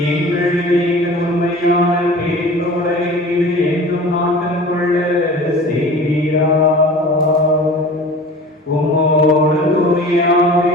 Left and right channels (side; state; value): both; normal; correlation 0.40